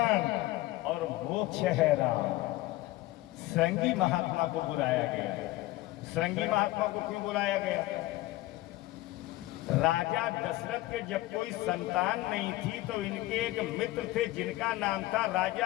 और मोक्ष है राम। श्रृंगी महात्मा को बुलाया गया। श्रृंगी महात्मा को क्यों बुलाया गया? राजा दशरथ के जब कोई संतान नहीं थी तो इनके एक मित्र थे जिनका नाम था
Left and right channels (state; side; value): quieter; right; 17.8 dB